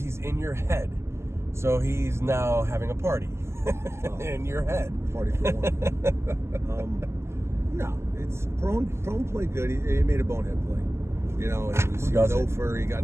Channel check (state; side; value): late; left; 0.13 ms